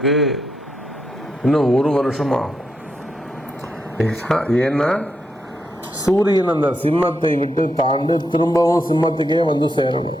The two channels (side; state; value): both; normal; correlation 0.82